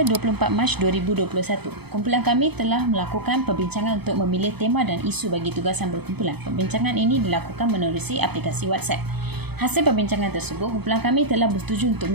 24 Mac 2021, kumpulan kami telah melakukan perbincangan untuk memilih tema dan isu bagi tugasan berkumpulan. Perbincangan ini dilakukan menerusi aplikasi WhatsApp. Hasil perbincangan tersebut, kumpulan kami telah bersetuju untuk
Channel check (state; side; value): late; left; 0.98 ms